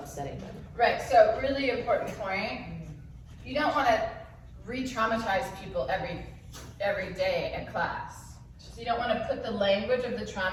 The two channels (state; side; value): identical; both; correlation 1.00